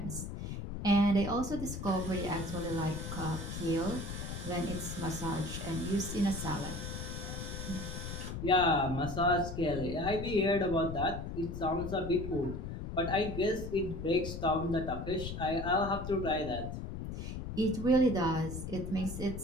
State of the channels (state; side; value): noise; left; rumble, 6 dB below the sound